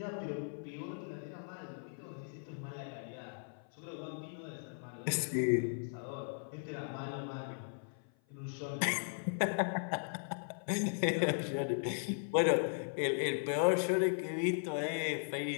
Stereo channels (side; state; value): right; silent; 53 dB below the other